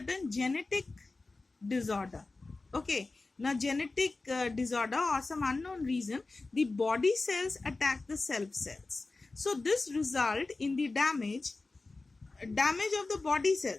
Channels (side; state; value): right; quieter; 3.5 dB